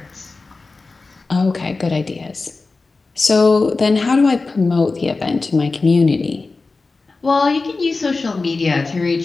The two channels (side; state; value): right; quieter; 3.8 dB